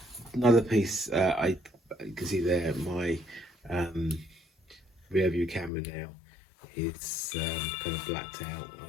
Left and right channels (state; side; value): drops out; right; at 5.7 s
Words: Another piece, you can see there my rear view camera now. It's kind of blacked out. I